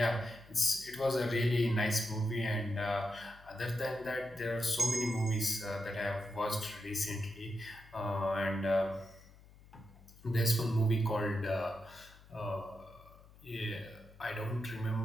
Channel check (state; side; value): noise; left; hum, 23 dB below the sound